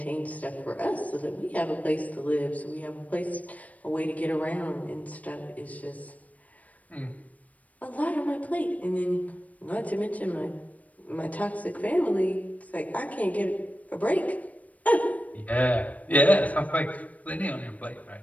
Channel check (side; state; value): right; late; 0.070 ms